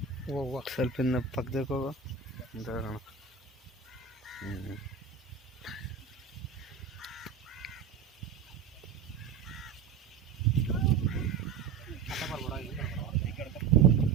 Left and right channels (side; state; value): left; quieter; 6.6 dB